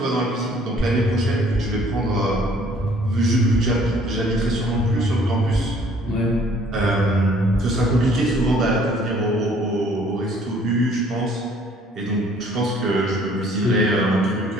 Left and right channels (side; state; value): both; normal; correlation 0.58